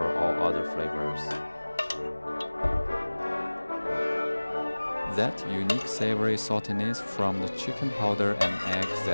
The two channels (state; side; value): inverted; both; correlation -1.00